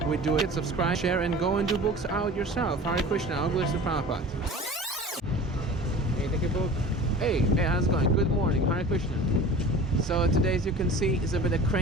we do it. Subscribe, share, and go and do books out yourself. Hare Krishna, all glories to Prabhupada. Hey, take a book. Hey, how's it going? Good morning, Hare Krishna. So today, as you can see, is a bit of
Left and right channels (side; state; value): both; normal; correlation 0.39